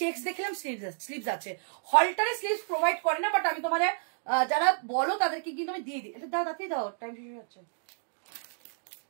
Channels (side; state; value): left; silent; digital silence